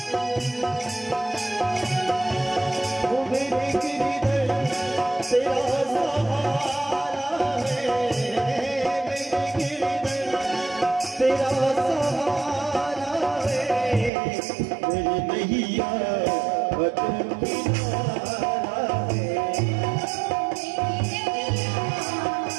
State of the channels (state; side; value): drops out; left; at 14.1 s